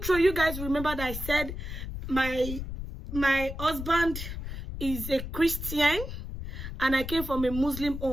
you guys remember that I said my husband is a Christian and I came from a Muslim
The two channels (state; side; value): noise; left; rumble, 7 dB below the sound